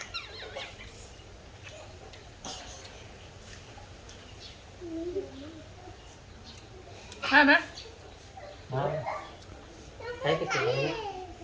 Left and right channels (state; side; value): identical; both; correlation 1.00